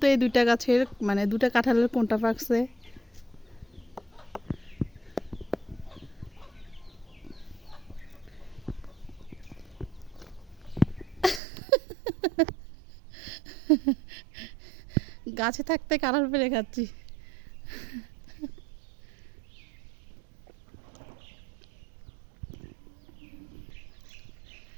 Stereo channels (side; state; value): left; drops out; at 11.4 s